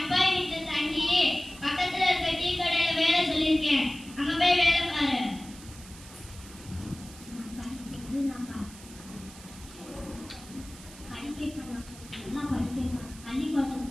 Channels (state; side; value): noise; right; hiss, 18 dB below the sound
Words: வீட்டு தங்கி பக்கத்துல இருக்க டீ கடையில வேலை சொல்லியிருக்கேன். அங்க போய் வேலை பாரு.